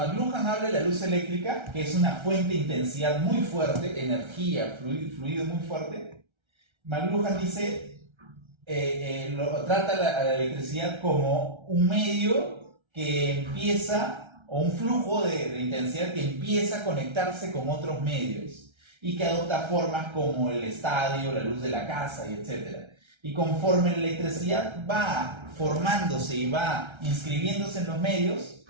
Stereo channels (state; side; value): late; left; 1.3 ms